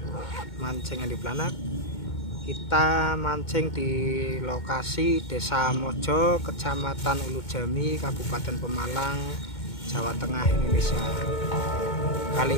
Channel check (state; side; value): late; right; 2.2 ms